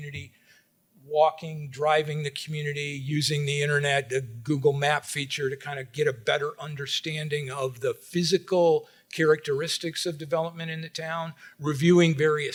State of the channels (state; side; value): identical; both; correlation 1.00